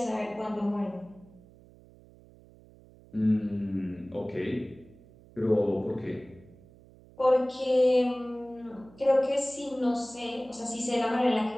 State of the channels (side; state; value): right; noise; hum, 24 dB below the sound